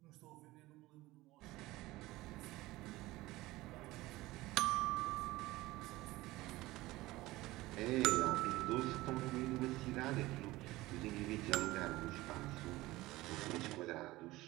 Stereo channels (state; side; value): quieter; left; 18.8 dB